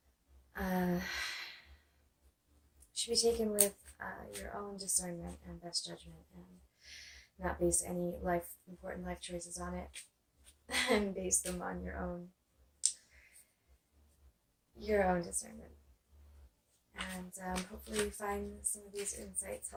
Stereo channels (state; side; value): identical; both; correlation 1.00